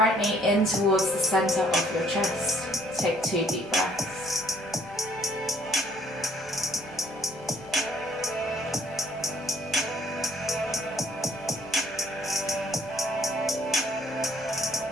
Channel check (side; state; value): both; normal; correlation 0.62